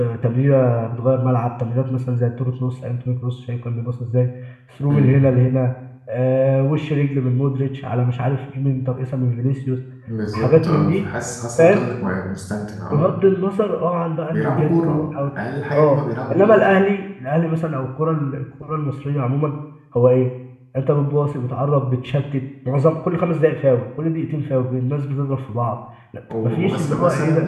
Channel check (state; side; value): identical; both; correlation 1.00